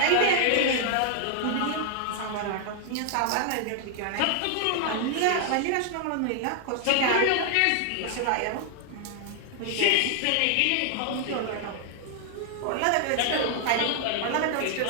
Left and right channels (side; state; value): both; different; correlation 0.00